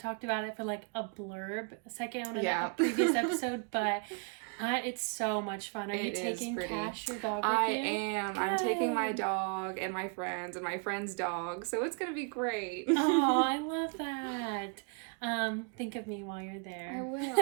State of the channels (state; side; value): quieter; left; 37.0 dB